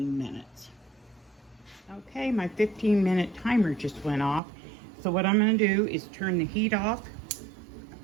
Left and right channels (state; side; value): drops out; left; at 4.4 s